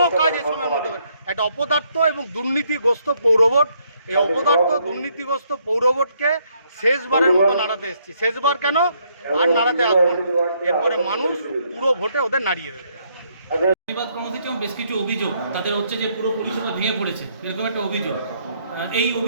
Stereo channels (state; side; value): inverted; both; correlation -0.71